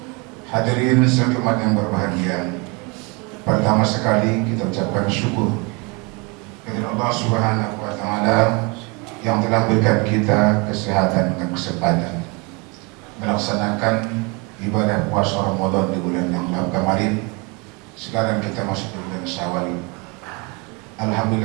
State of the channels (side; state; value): left; quieter; 29.5 dB